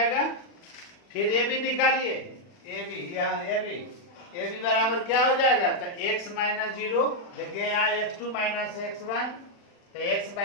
फिर ये भी निकालिए, ये भी बराबर क्या हो जाएगा? तो x - 0 देखिए यहाँ x2 - x1, तो x -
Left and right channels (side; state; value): right; late; 40 ms